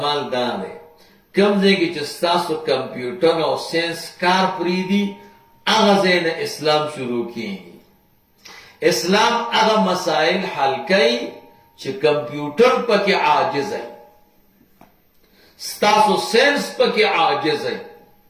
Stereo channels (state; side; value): identical; both; correlation 1.00